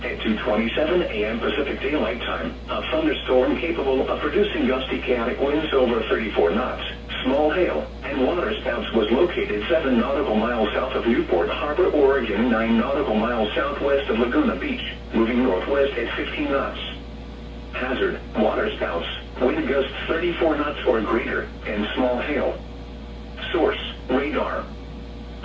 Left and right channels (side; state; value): both; identical; correlation 1.00